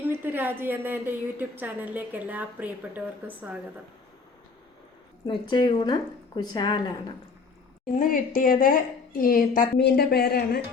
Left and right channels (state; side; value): quieter; right; 4.6 dB